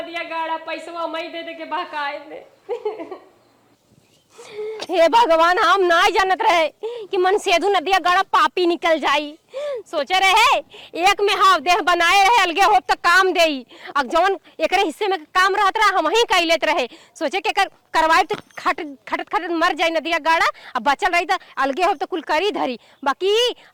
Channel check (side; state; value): both; identical; correlation 1.00